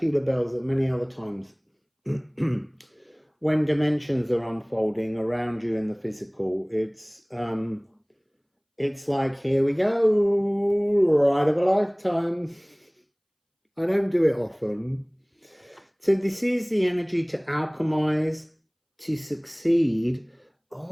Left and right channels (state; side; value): identical; both; correlation 1.00